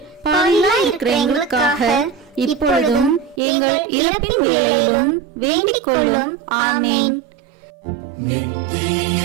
பாவிகளாய் இருக்கிற எங்களுக்காக இப்பொழுதும் எங்கள் இறப்பின் வேளையிலும் வேண்டிக் கொள்ளும். ஆமேன். நித்திய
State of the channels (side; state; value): left; drops out; at 3.4 s